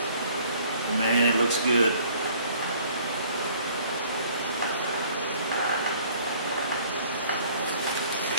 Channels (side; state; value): both; inverted; correlation -0.56